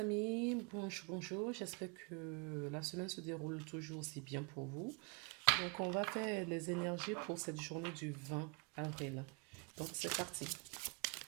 bonjour, j'espère que la semaine se déroule toujours aussi bien pour vous. Donc on va faire les énergies pour cette journée du 20 avril. Donc c'est parti.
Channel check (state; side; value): quieter; left; 32.6 dB